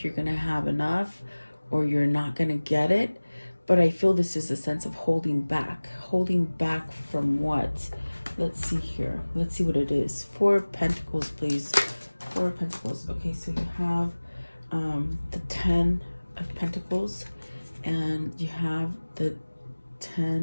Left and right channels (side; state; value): both; inverted; correlation -1.00